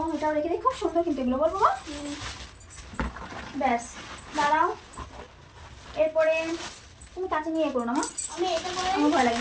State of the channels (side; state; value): both; identical; correlation 1.00